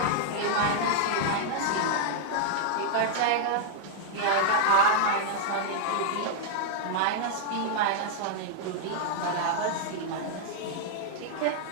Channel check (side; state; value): both; different; correlation -0.01